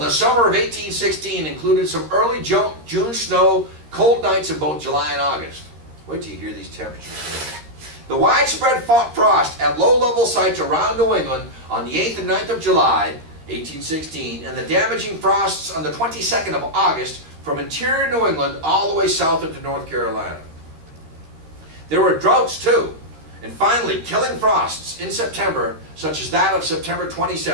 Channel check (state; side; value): late; left; 13 ms